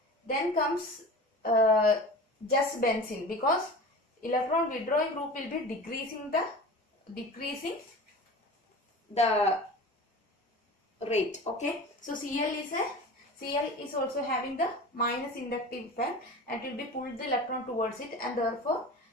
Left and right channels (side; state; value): both; normal; correlation 0.35